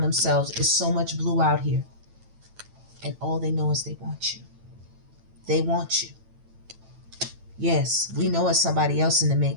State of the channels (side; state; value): left; late; 9.0 ms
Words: themselves. It's so much blue out here. And all they know is they want you. They want you. Yes, we know it's somebody else in the